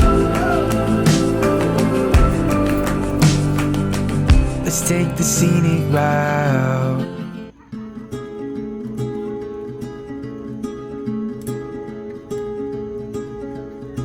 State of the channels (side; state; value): both; identical; correlation 1.00